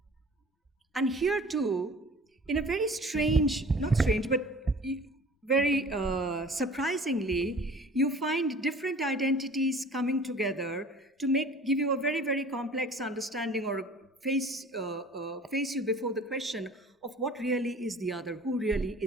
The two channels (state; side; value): normal; both; correlation 0.46